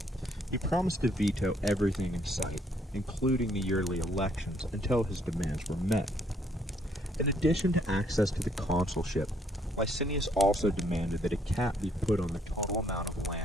He promised to veto everything in sight, including the yearly elections, until his demands were met. In addition to access to the consulship, Licinius also demanded that a cap be put on the total amount of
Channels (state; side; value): normal; both; correlation 0.68